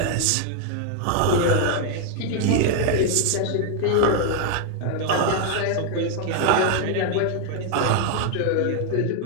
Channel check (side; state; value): both; different; correlation 0.00